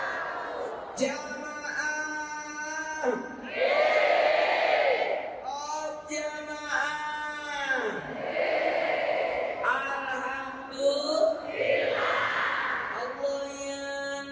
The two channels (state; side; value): identical; both; correlation 1.00